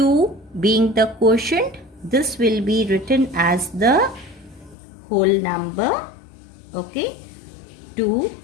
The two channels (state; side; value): drops out; right; at 4.8 s